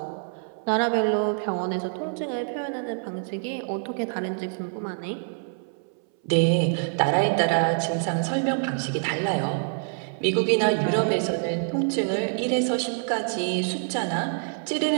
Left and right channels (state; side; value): silent; left; 61 dB below the other